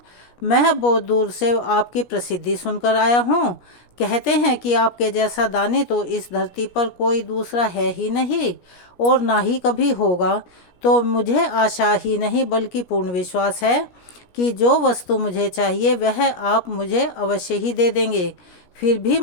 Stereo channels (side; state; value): right; late; 17 ms